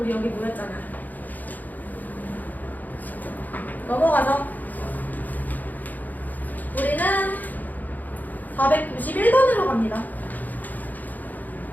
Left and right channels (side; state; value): right; late; 0.083 ms